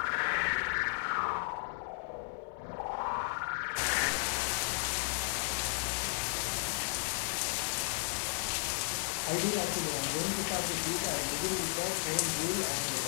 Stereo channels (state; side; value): silent; right; digital silence